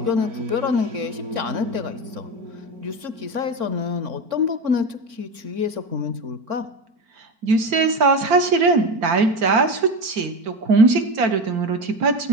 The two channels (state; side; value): late; left; 4.4 ms